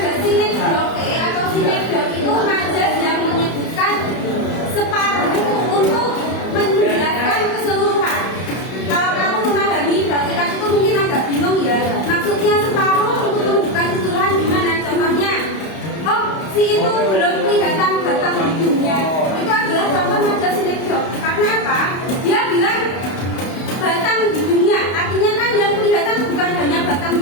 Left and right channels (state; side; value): late; right; 31 ms